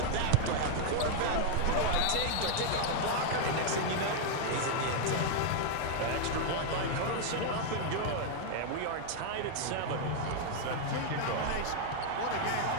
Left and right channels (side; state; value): both; different; correlation 0.00